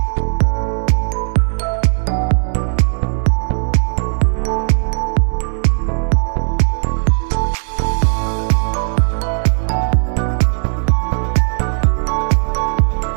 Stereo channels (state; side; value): silent; left; digital silence